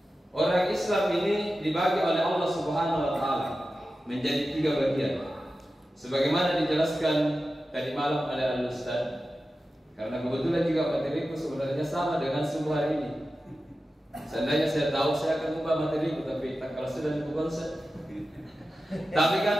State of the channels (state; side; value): normal; both; correlation 0.93